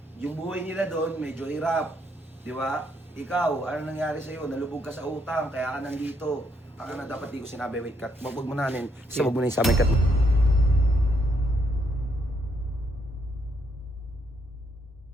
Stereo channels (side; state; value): both; normal; correlation 0.74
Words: Yung buhay nila doon, medyo hirap. Di ba? Ikaw, ano nangyari sa'yo? Nalubog ka sa utang, kaya ka nandito. Baka na dapat di ko sinabi, wait cut. Wag mo nanin. Kasi wag mo na yung sa may cut.